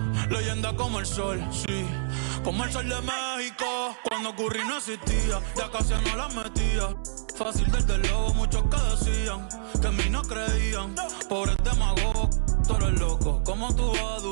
Leyenda como el sol, sí, como el sol de México. Cuando Curry no existía, ya casi no la metía. Fácil desde luego, muchos que decían que en mí no creían. Pobres demagogos, tú eres loco. ¿Cómo tú vas a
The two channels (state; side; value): silent; left; 60 dB below the other